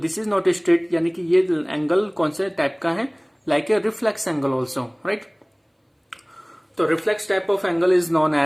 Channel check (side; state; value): both; identical; correlation 1.00